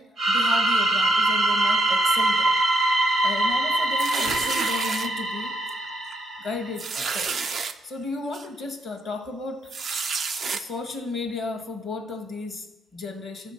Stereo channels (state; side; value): normal; both; correlation 0.76